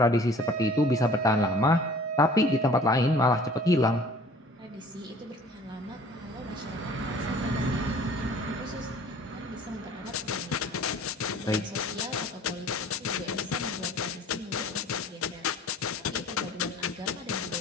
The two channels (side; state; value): both; normal; correlation 0.50